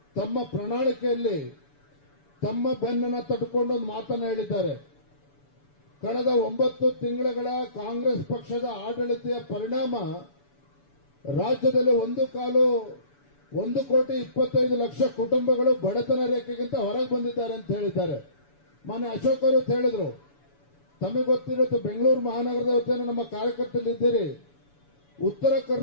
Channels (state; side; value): late; right; 7.0 ms